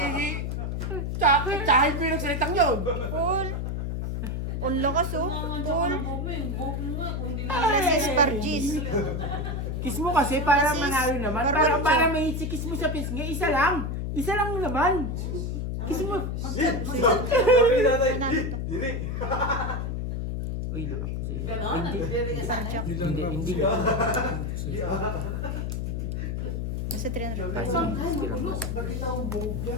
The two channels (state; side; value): noise; left; hum, 2 dB below the sound